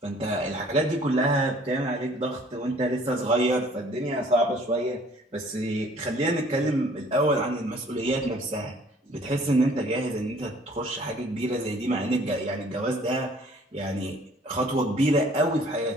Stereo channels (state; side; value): normal; both; correlation 0.56